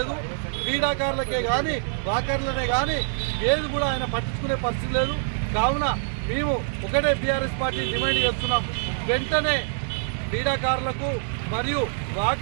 క్రీడాకారులకే కానీ వాకర్లనే కానీ ఏది కూడా ఆయన పట్టించుకునే పరిస్థితి లేదు. కావున మేము ఒకటే బీఆర్ఎస్ పార్టీ డిమాండ్ చేస్తున్నాం, వెంటనే క్రీడాకారులకు మరియు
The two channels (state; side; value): silent; left; 60 dB below the other